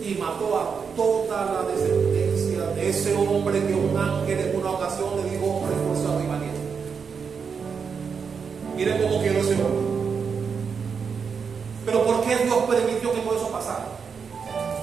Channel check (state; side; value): quieter; left; 6.0 dB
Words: Y mató a toda la descendencia de ese hombre que un ángel en una ocasión le dijo: hombre esforzado y valiente. Miren cómo quedó ese hombre. Pero ¿por qué Dios permitió que todo eso pasara?